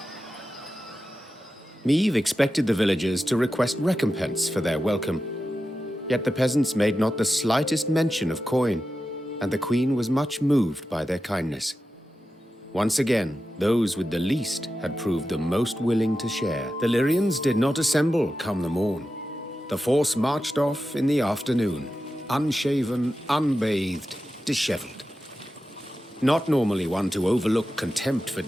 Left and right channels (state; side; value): normal; both; correlation 0.92